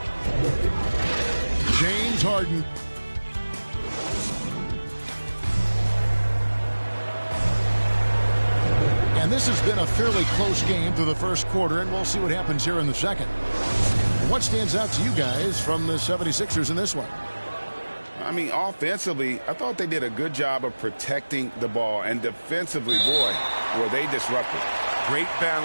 James Harden. And this has been a fairly close game through the first quarter, and we'll see what happens here in the second. What stands out to you guys from the 76ers in this one? I mean, offensively, I thought they did a good job of protecting the ball. And defensively, boy, were they disruptive. Great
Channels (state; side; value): inverted; both; correlation -1.00